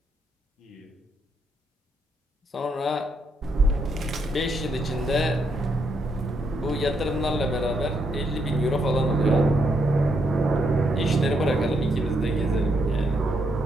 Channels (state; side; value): normal; both; correlation 0.77